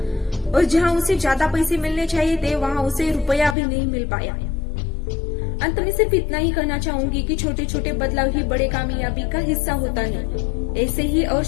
और जहाँ उसे ज्यादा पैसे मिलने चाहिए थे वहाँ उसे रुपया भी नहीं मिल पाया। अंत में सिर्फ इतना ही कहना चाहूंगी कि छोटे छोटे बदलाव ही बड़े कामयाबी का हिस्सा होता है। ऐसे ही और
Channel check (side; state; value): right; drops out; at 3.6 s